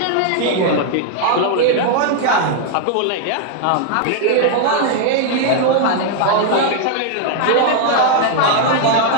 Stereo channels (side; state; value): both; different; correlation 0.00